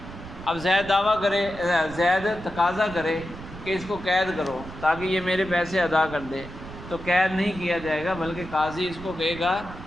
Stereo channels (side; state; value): right; noise; rumble, 13 dB below the sound